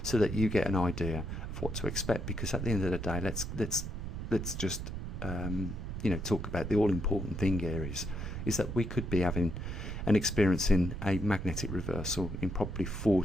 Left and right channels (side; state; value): right; noise; rumble, 6 dB below the sound